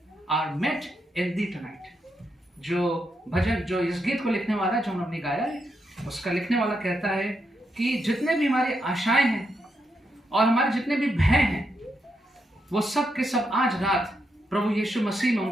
are met in thee tonight. जो भजन, जो इस गीत को लिखने वाला, जो हमने गाया है, उसका लिखने वाला कहता है कि जितने भी हमारी आशाएं हैं और हमारे जितने भी भय हैं, वो सब के सब आज रात प्रभु यीशु मसीह में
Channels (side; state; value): both; normal; correlation 0.82